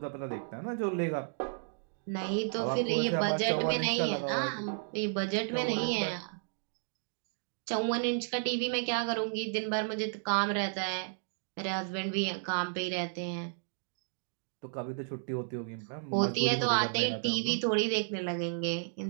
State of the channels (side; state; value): left; silent; digital silence